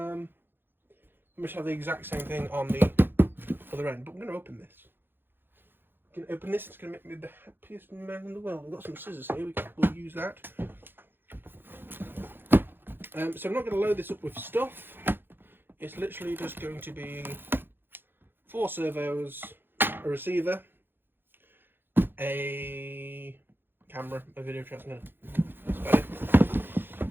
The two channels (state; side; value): late; left; 0.10 ms